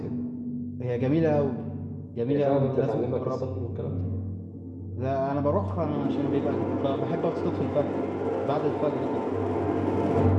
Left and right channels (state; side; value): identical; both; correlation 1.00